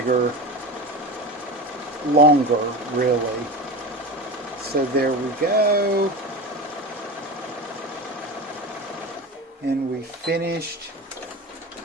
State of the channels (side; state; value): both; normal; correlation 0.27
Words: longer really. So there we go. And we finished,